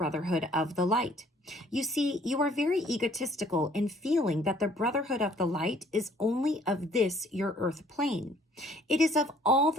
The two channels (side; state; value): both; normal; correlation 0.59